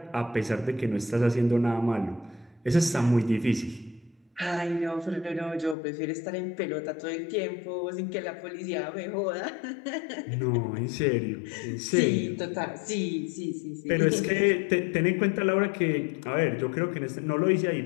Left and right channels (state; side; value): drops out; right; at 5.8 s